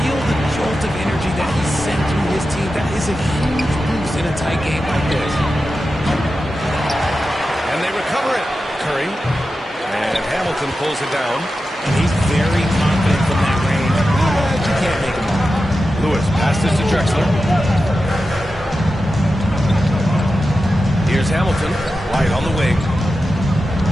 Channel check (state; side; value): normal; both; correlation 0.92